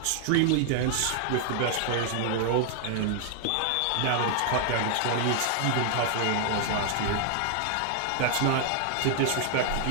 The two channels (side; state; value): both; different; correlation 0.00